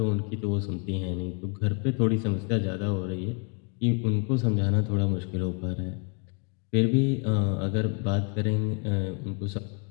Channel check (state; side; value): quieter; right; 38.4 dB